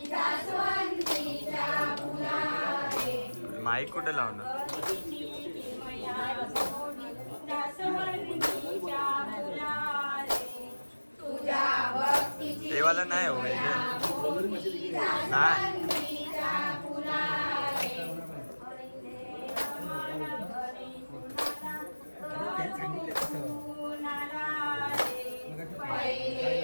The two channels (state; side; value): inverted; both; correlation -1.00